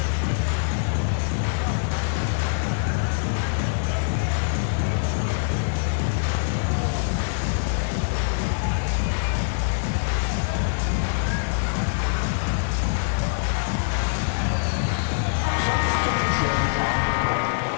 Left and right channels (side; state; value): right; silent; digital silence